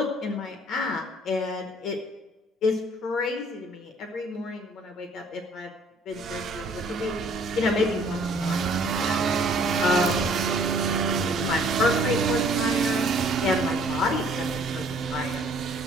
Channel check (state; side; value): normal; both; correlation 0.58